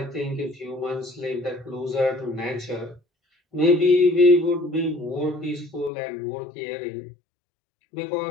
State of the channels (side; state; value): right; drops out; at 5.9 s